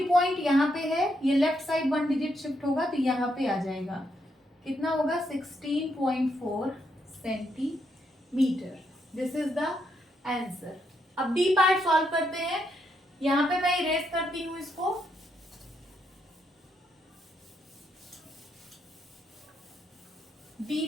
पॉइंट यहाँ पे है, ये लेफ्ट साइड 1 डिजिट शिफ्ट होगा, तो यहाँ पे आ जाएगा। कितना होगा? 16.4 centimetre. This is the answer. अब डी पार्ट सॉल्व करते हैं। यहाँ पे मैं इरेज करती हूँ इसको। D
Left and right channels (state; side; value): normal; both; correlation 0.78